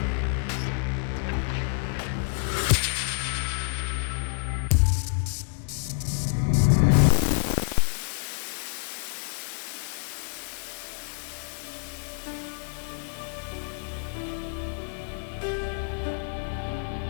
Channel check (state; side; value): silent; right; 59 dB below the other